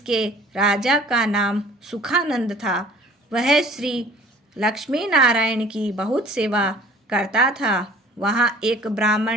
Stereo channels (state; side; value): normal; both; correlation 0.50